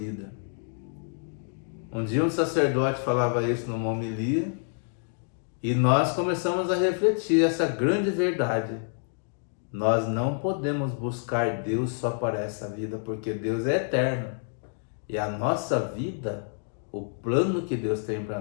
Um dia um sacerdote falava isso numa homilia, e nós começamos a refletir essa grande verdade. Nós não podemos buscar Deus só para essa vida, porque Deus é eterno. E a nossa vida, o plano que Deus tem para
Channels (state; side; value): silent; right; digital silence